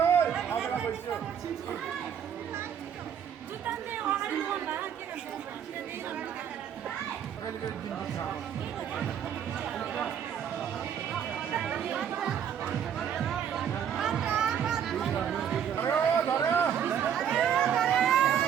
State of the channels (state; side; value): quieter; left; 8.7 dB